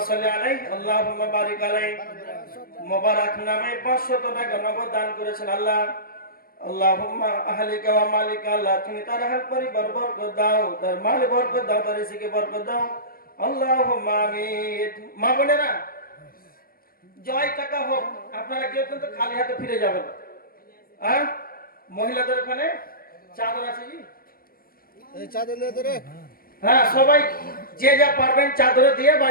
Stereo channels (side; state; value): right; late; 0.42 ms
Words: সাল্লি আলাইহি আল্লাহুম্মা বারিক আলাইহি, মোবারক নামে 500 টাকা নগদ দান করেছেন। আল্লাহ আল্লাহুম্মা আহলিকা ওয়া মালিকা, আল্লাহ তুমি তার আহল পরিবার বরকত দাও, তার মাল বরকত দাও, তার রিজিকে বরকত দাও। আল্লাহুম্মা আমিন। মা বোনেরা, জয় টাকা হোক, আপনারা কেউ কিন্তু খালি হাতে ফিরে যাবেন। মহিলাদের ওখানে চাদর আছে জি? এই চাদর নিয়ে ধরে, হ্যাঁ, সবাই যে যা পারবেন চাদরে দিয়ে